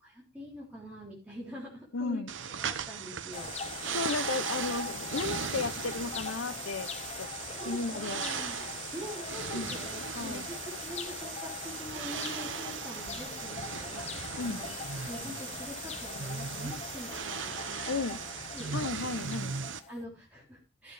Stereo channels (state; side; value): normal; both; correlation 0.07